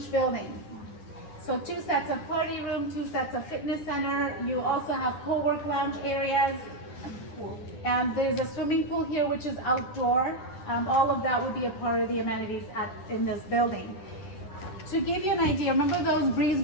building. So 2 sets of party room, 2 sets of fitness center. You also have co-work lounge areas. There's a swimming pool here, which is outdoor. All of that would be a part of the amenities in this building. To give you an idea, remember those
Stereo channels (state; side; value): late; right; 10 ms